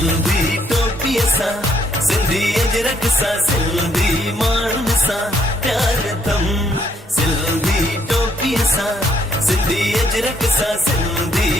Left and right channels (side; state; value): both; normal; correlation 0.70